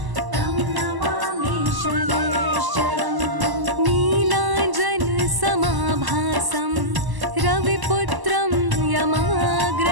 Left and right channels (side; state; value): left; late; 1.0 ms